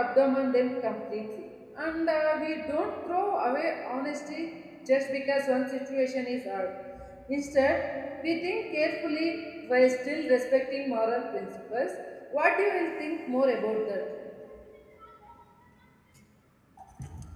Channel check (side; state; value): both; identical; correlation 1.00